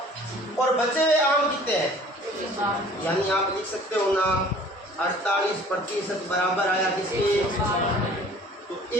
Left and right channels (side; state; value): both; normal; correlation 0.50